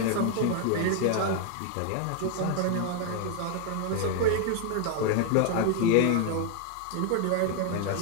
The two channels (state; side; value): different; both; correlation 0.00